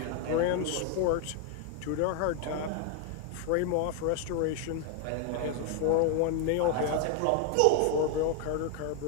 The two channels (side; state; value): both; different; correlation 0.00